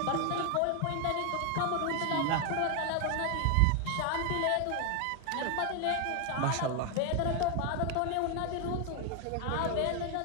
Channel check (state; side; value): different; both; correlation 0.01